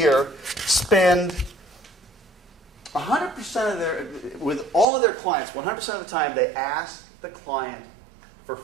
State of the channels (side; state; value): left; drops out; at 4.9 s